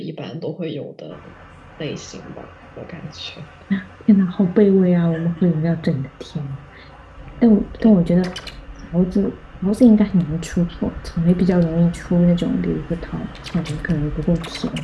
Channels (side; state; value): both; identical; correlation 1.00